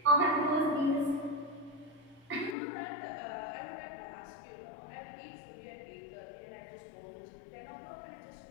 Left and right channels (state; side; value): drops out; right; at 2.6 s